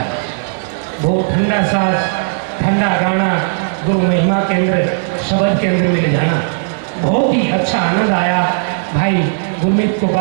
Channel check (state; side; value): silent; left; digital silence